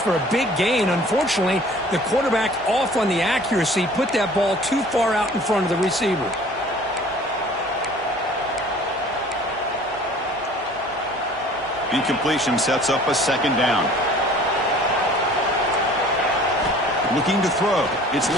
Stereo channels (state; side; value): noise; left; hum, 29 dB below the sound